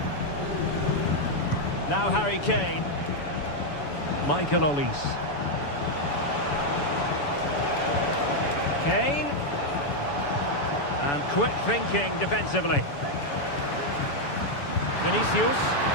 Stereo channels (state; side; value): late; right; 7.0 ms